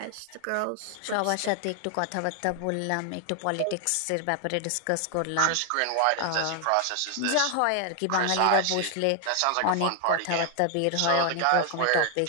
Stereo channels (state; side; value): different; both; correlation 0.00